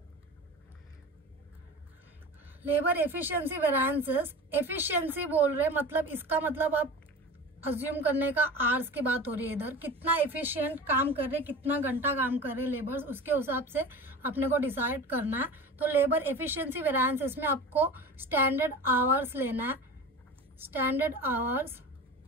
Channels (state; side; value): normal; both; correlation 0.33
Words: Labour efficiency variances, efficiency बोल रहे मतलब इसका मतलब आप अज्यूम करने का आवर्स की बात हो रही है। इधर कितना एफिशिएंट काम कर रहे, कितना घंटा काम कर रहे लेबर्स, उसके हिसाब से अपने को डिसाइड करना है। तो लेबर एफिशिएंसी वेरिएंसेस में आपको स्टैंडर्ड आवर्स लेना है, standard hours